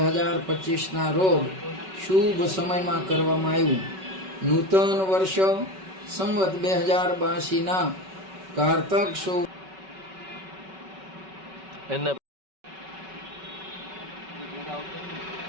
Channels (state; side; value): late; left; 5.3 ms